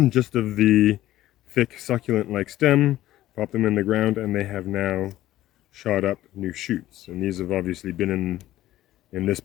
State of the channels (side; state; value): right; quieter; 14.6 dB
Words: just of the thick succulent-like stem, pop them in the ground, and they have now shot up new shoots. And these have obviously been in this